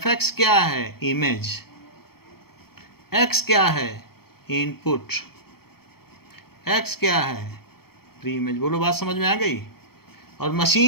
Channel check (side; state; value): right; late; 0.95 ms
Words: क्या है? इमेज। x क्या है? इनपुट। x क्या है? Pre image. बोलो, बात समझ में आ गई? और